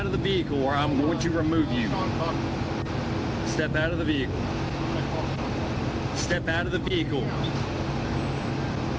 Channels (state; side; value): identical; both; correlation 1.00